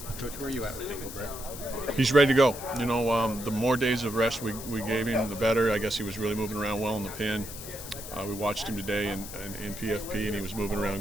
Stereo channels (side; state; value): left; noise; hiss, 11 dB below the sound